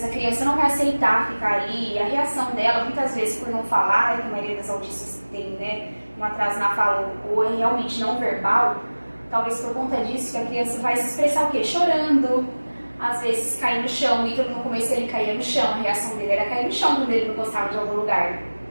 a criança não vai aceitar ficar ali, a reação dela, muitas vezes por não falar, que a maioria das autistas tem, né, um atraso na fala ou é realmente não verbal, talvez por conta disso que a criança vai se expressar o quê? Chorando, às vezes cair no chão, e no começo ele caía no chão, a reação dele era cair no chão quando ele não gostava de algum lugar.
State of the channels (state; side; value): inverted; both; correlation -1.00